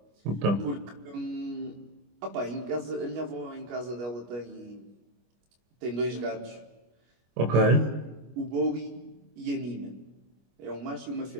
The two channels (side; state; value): left; late; 25 ms